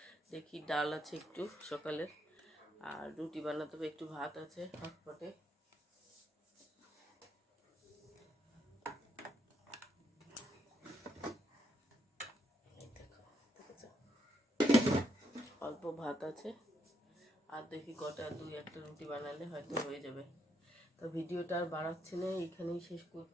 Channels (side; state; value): both; normal; correlation 0.76